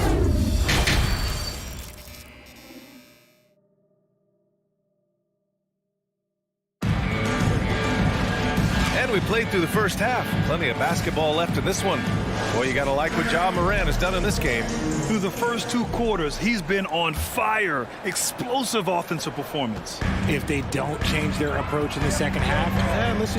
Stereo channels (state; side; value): identical; both; correlation 1.00